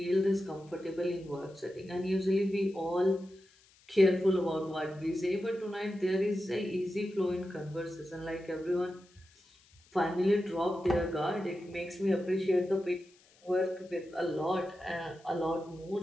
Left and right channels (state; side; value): noise; left; hiss, 29 dB below the sound